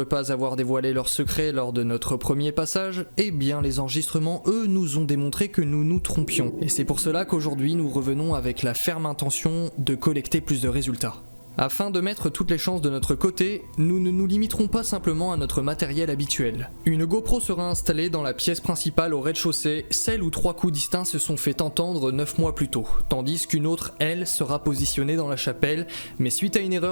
pas avoir dévoilé leurs secrets lors de notre premier passage, eh bien les enregistrements, eux, nous ont démontré que nous nous trompions. Et c'est pour cela qu'aujourd'hui nous revenons avec la ferme intention de collecter plus de résultats. Afin de mettre toutes les chances de notre côté, nous ne nous limiterons pas simplement à notre matériel habituel. Une GoPro sera installée dans la pièce principale au rez-de-chaussée, celle où 3 coups distincts se sont fait entendre 9 mois plus tôt, tandis qu'une autre, elle, sera positionnée dans la chapelle, mais suite à une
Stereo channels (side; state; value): both; inverted; correlation -1.00